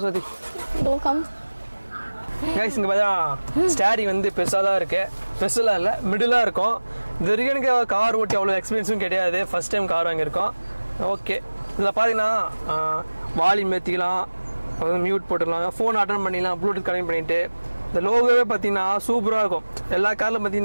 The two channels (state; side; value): inverted; both; correlation -1.00